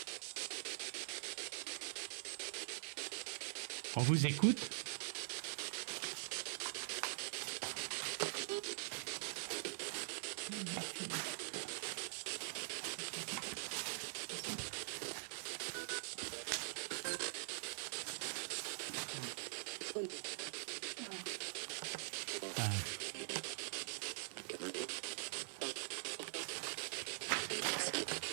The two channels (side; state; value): left; silent; digital silence